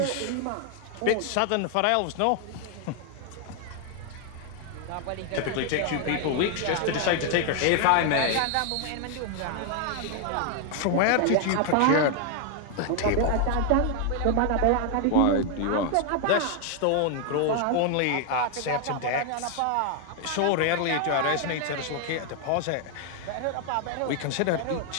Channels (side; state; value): both; different; correlation 0.00